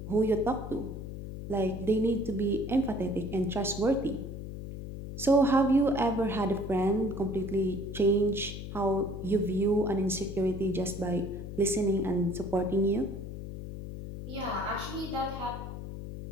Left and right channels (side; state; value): left; noise; hum, 8 dB below the sound